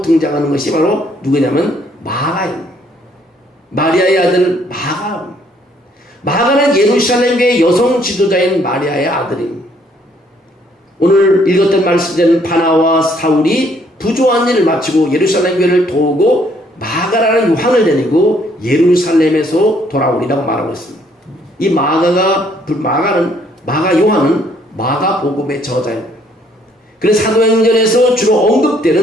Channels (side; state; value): both; normal; correlation 0.66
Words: 등장하는 것이 바로 누구냐면 마가입니다. 마리아의 아들 마가. 마가는 예루살렘 교회 여성 지도자인 마리아의 아들입니다. 오늘 읽었던 말씀대로 바나와 사울이 부조한 일을 마치고 예루살렘 교회를 도우고 마가라는 요한을 데리고 예루살렘에서 돌아오리라고 말하고 있습니다. 이 마가 요한은 마가복음의 저자입니다. 그래서 사도행전에서 주로